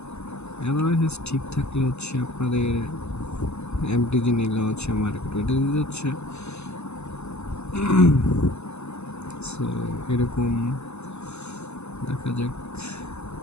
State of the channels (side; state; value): right; late; 0.81 ms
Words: অ্যানালাইসিস ঠিক থাকলে হচ্ছে আপনাদের এমটিজি নিলে হচ্ছে মার্কেট ওইটা দিতে হচ্ছে। সো এরকম দেখা যাক,